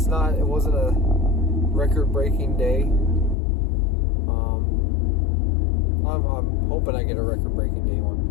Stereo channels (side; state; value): right; drops out; at 3.4 s